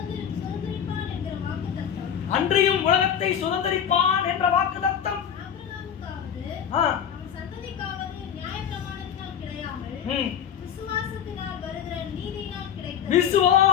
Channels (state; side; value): quieter; right; 8.6 dB